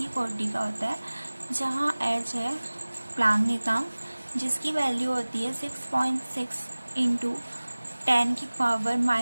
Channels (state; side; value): inverted; both; correlation -1.00